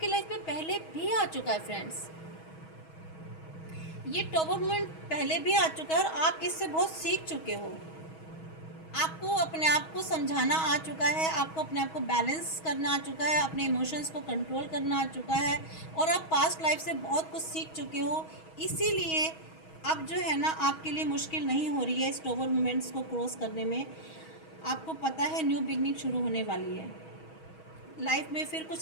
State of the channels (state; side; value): late; right; 6.3 ms